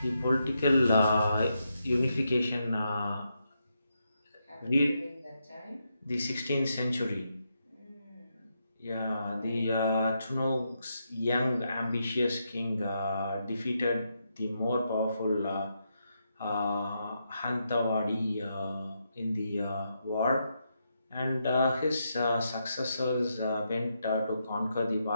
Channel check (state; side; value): inverted; both; correlation -0.82